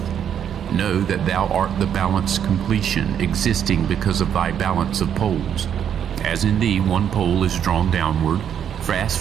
Know that thou art the balanced completion, existing because of thy balance of poles. As in thee one pole is drawn downward, fast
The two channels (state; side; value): quieter; left; 8.9 dB